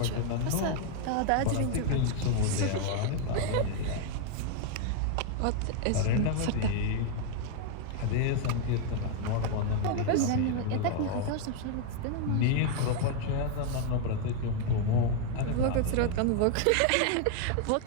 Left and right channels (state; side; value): different; both; correlation 0.00